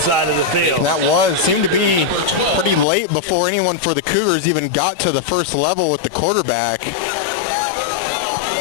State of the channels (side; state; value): right; drops out; at 2.9 s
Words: of the field. That seemed to be pretty late before anyone for the Cougars even got to the first level with the quarterback.